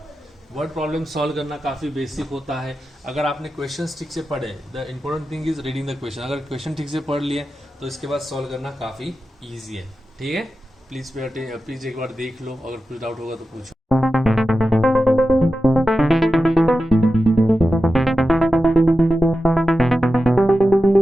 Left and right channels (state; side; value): normal; both; correlation 0.92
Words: Word problem solve करना काफ़ी बेसिक होता है अगर आपने क्वेश्चंस ठीक से पढ़े. The important thing is reading the question. अगर क्वेश्चन ठीक से पढ़ लिए तो इसके बाद सॉल्व करना काफ़ी ईजी है. ठीक है, प्लीज़ एक बार देख लो, अगर कुछ डाउट होगा तो पूछो.